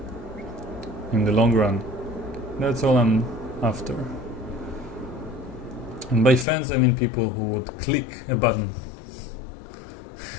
in the long run, that's all I'm after. And by fans I mean people who would click a button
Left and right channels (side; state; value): right; drops out; at 6.5 s